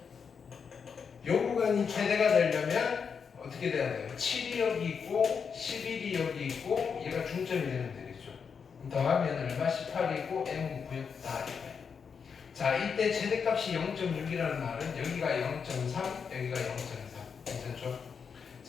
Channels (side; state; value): right; quieter; 6.2 dB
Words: 요 구간이 최대가 되려면 어떻게 돼야 돼요? 7이 여기 있고 11이 여기 있고 얘가 중점이 되면 되겠죠. 더하면 얼마? 18이고 M은 9였다. 자, 이때 최대값이 0.6이라는 말은 여기가 0.3, 여기가 0.3. 괜찮죠?